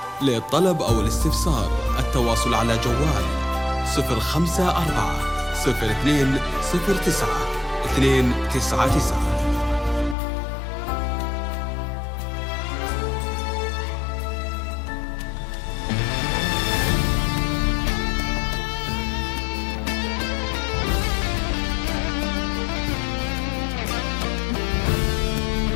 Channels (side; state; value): right; drops out; at 10.2 s